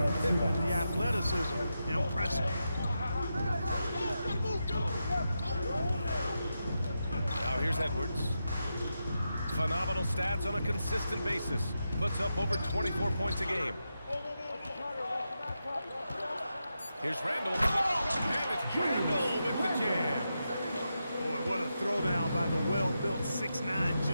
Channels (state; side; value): inverted; both; correlation -0.87